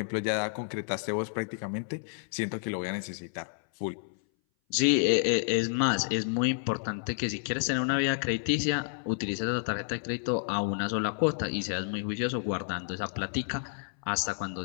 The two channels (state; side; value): silent; right; 58 dB below the other